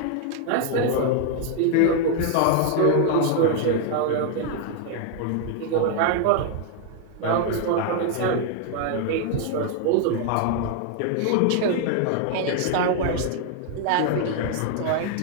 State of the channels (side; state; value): both; different; correlation 0.00